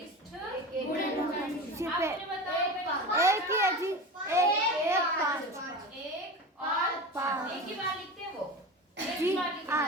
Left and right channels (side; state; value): both; normal; correlation 0.28